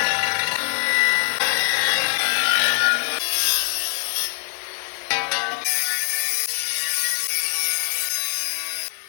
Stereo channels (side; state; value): right; silent; 64 dB below the other